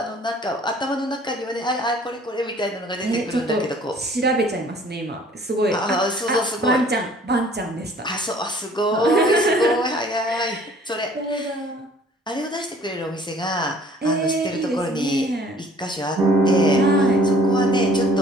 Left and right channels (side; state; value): both; normal; correlation 0.54